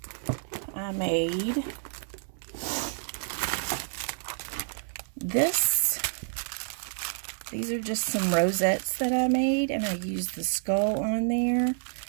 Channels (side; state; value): left; silent; digital silence